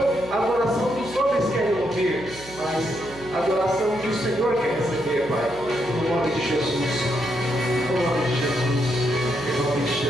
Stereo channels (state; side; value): noise; right; hum, 18 dB below the sound